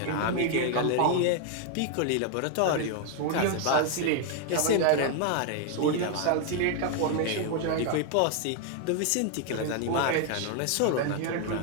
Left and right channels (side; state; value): both; different; correlation 0.00